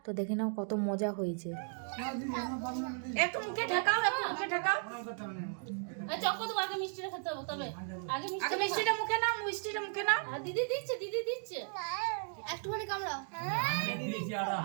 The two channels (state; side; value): silent; left; 54 dB below the other